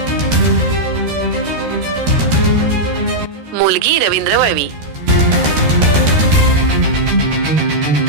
मुलगी रवींद्र वळवी।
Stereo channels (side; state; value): left; late; 13 ms